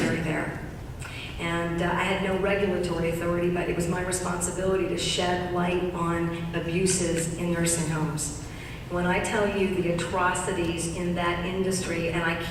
there. And I had no regulatory authority, but it was my responsibility to shed light on abuses in nursing homes. When I tell you the atrocities in that industry, and I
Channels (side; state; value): both; identical; correlation 1.00